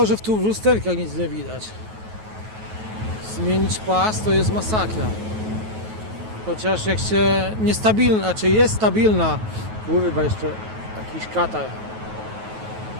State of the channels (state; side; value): late; left; 9.3 ms